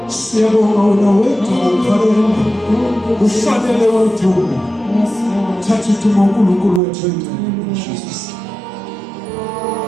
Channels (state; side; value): drops out; left; at 6.8 s